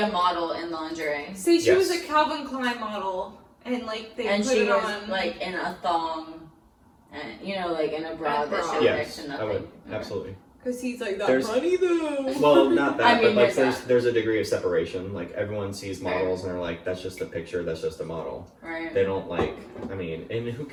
model in lingerie. Say she was a Yes. Calvin Klein model, and like they And put she it was on like in a thong, and you know, like in a bra A that bra. showed Yes, next to I nothing. would. Okay. Absolutely. because he's like that There's- money though. Well, not that, I mean, but like there's there's a degree of separation. Like everyone sees Fair. models and they're like, that's just a picture, that's just a model. Right. They don't like, I mean, and who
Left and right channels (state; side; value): identical; both; correlation 1.00